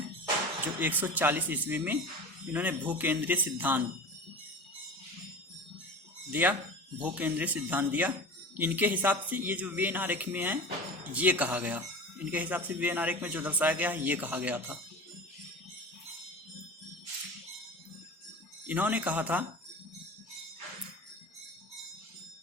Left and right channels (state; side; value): normal; both; correlation 0.33